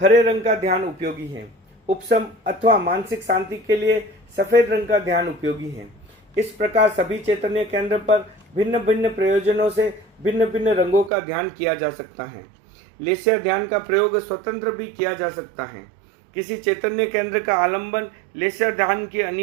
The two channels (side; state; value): left; drops out; at 11.1 s